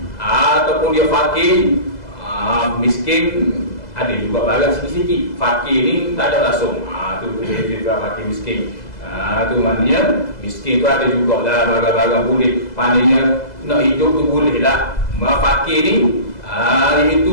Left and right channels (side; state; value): right; late; 2.0 ms